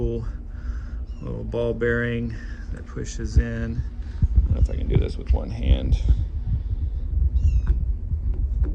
little ball bearing that pushes in. I don't know if I can do this with one hand.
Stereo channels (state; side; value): identical; both; correlation 1.00